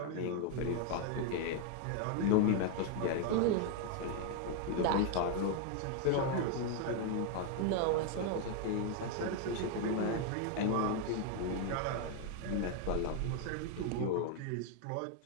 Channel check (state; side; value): different; both; correlation 0.01